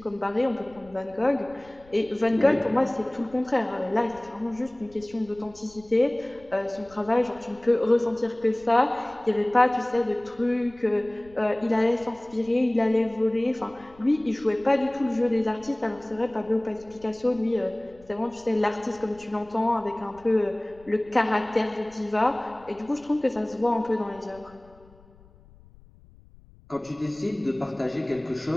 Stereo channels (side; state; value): left; noise; rumble, 26 dB below the sound